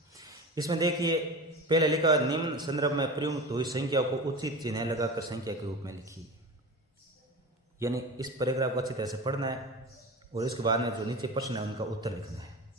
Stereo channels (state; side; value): normal; both; correlation 0.30